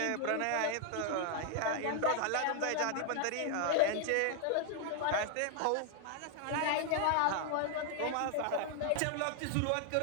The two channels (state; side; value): different; both; correlation 0.00